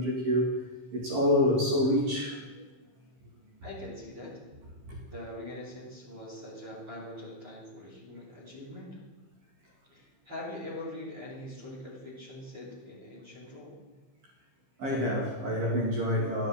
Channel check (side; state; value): left; late; 15 ms